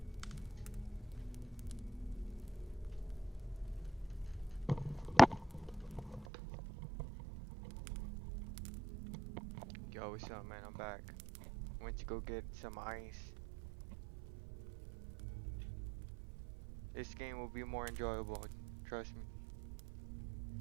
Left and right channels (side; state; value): left; drops out; at 6.2 s